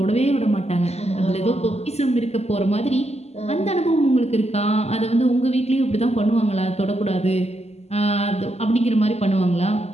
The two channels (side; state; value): right; late; 0.30 ms